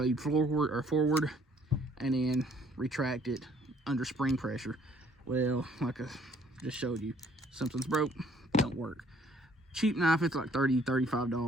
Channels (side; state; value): both; normal; correlation 0.61